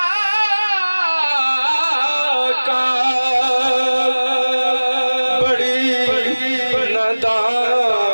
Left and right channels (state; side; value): inverted; both; correlation -1.00